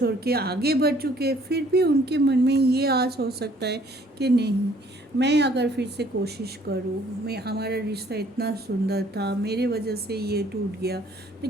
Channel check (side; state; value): both; normal; correlation 0.60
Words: के आगे बढ़ चुके, फिर भी उनके मन में ये आस हो सकता है कि नहीं, मैं अगर फिर से कोशिश करूँ, मैं हमारा रिश्ता इतना सुंदर था, मेरे वजह से ये टूट गया,